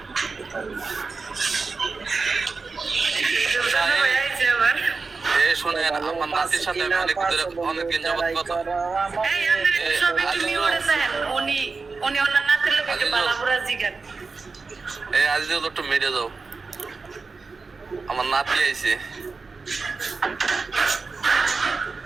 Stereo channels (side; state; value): left; quieter; 4.3 dB